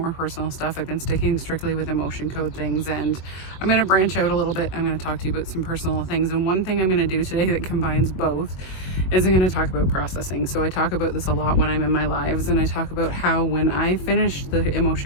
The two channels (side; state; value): right; late; 22 ms